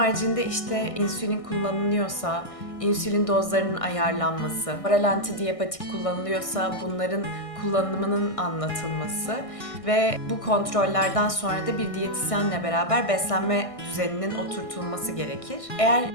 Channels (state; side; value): late; right; 1.6 ms